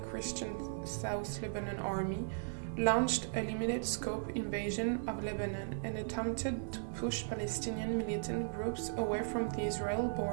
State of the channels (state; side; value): silent; left; 53 dB below the other